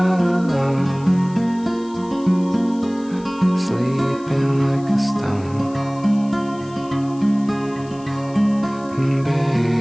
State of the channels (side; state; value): left; noise; hiss, 25 dB below the sound